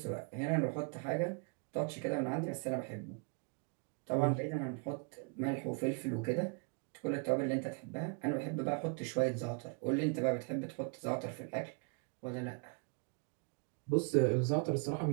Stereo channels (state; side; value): quieter; left; 35.3 dB